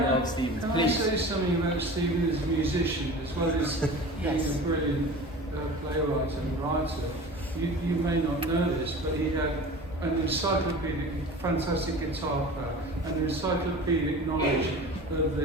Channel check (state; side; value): normal; both; correlation 0.37